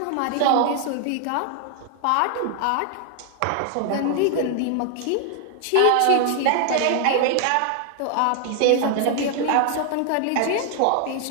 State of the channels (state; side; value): different; both; correlation 0.00